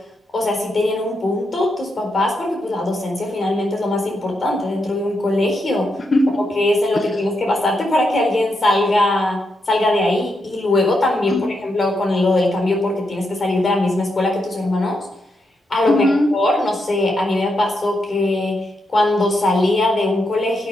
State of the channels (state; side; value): normal; both; correlation 0.83